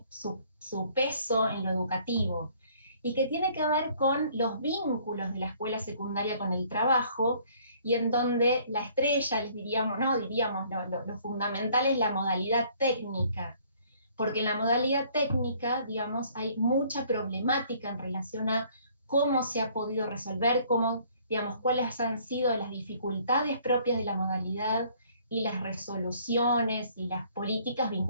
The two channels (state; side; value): inverted; both; correlation -0.60